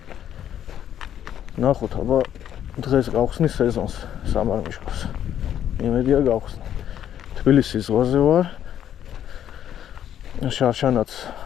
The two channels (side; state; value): right; quieter; 10.3 dB